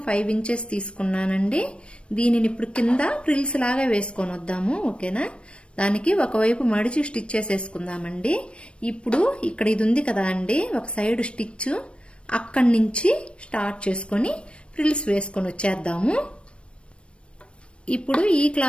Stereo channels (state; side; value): late; right; 0.059 ms